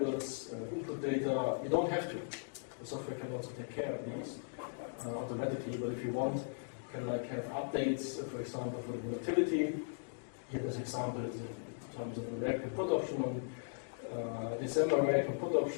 input data. You don't have to. The software can also take care of these automatically, but if you want, you can like have updates, for example, for the volatility. Here this example is in terms of the reactive put option on December reactive put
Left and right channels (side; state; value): right; silent; digital silence